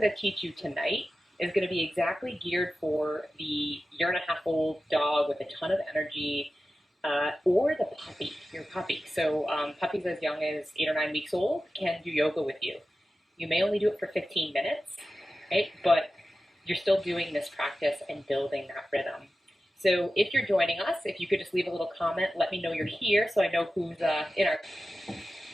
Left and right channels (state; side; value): normal; both; correlation 0.94